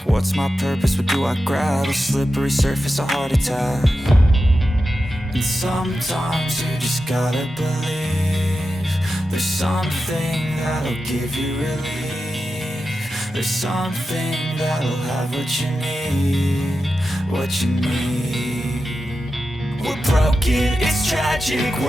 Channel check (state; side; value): normal; both; correlation 0.91